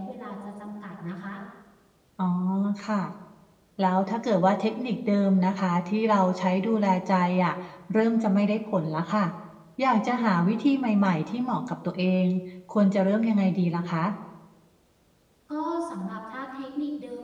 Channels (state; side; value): identical; both; correlation 1.00